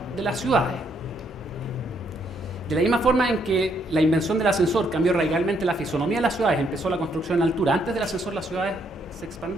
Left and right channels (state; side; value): normal; both; correlation 0.72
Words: de las ciudades. De la misma forma en que la invención del ascensor cambió radicalmente la fisonomía de las ciudades, empezó la construcción en altura. Antes del ascensor las ciudades se